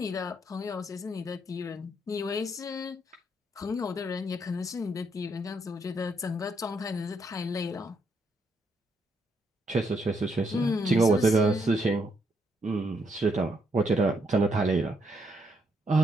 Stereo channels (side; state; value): both; normal; correlation 0.76